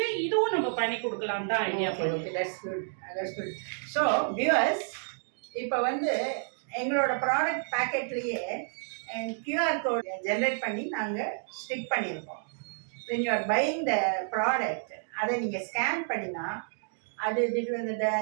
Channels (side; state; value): left; silent; digital silence